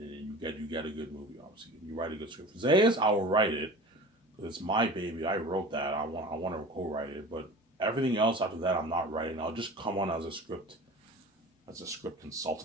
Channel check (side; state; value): both; normal; correlation 0.37